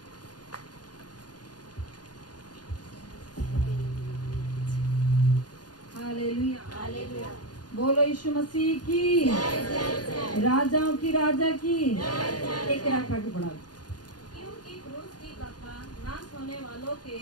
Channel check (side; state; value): right; late; 0.69 ms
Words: Hallelujah, hallelujah. बोलो यीशु मसीह की, राजाओं की राजा की। 1 के रखा के पढ़ा। क्योंकि क्रूस की कथा नाश होने वालों के